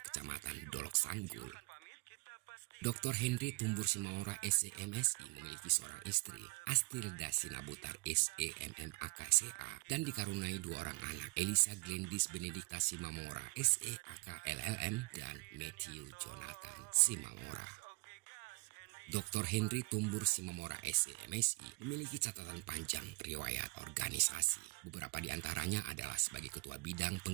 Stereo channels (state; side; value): quieter; left; 28.8 dB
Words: Kecamatan Dolok Sanggul. Dr. Henry Tumbur Simamora SEMSI memiliki seorang istri, Astilda Sinabutar SEMMAKSA, dan dikaruniai dua orang anak, Elisa Glendis Benedikta Simamora SEAK LLM dan Matthew Jonathan Simamora. Dr. Henry Tumbur Simamora SEMSI memiliki catatan panjang riwayat organisasi. Beberapa di antaranya adalah sebagai Ketua Bidang